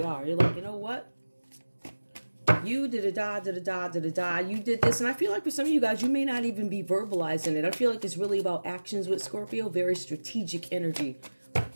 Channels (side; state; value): both; inverted; correlation -1.00